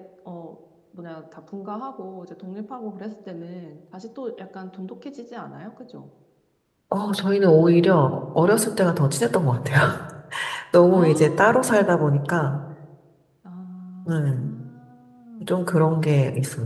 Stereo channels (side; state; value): both; identical; correlation 1.00